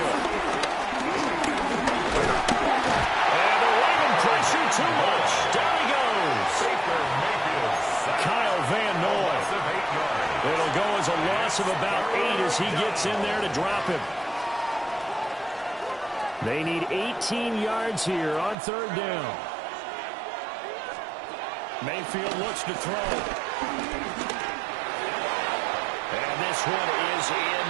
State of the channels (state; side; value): drops out; left; at 18.6 s